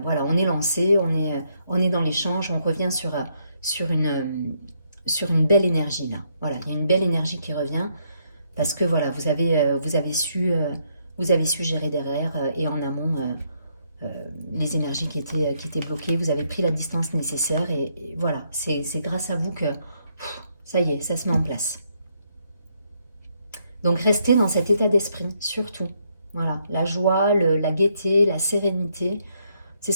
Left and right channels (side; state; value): both; inverted; correlation -0.74